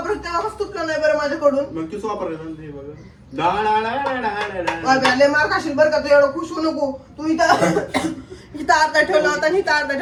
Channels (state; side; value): identical; both; correlation 1.00